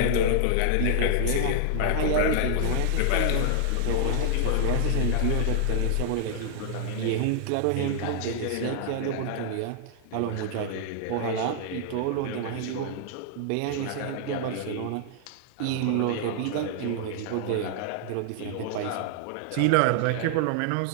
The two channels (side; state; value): both; different; correlation -0.01